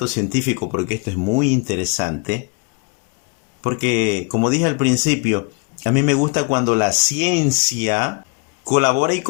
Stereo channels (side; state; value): right; quieter; 32.9 dB